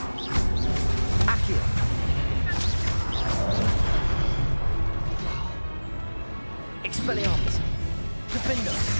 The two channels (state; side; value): inverted; both; correlation -1.00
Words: Accio! Expelliarmus! Defendo!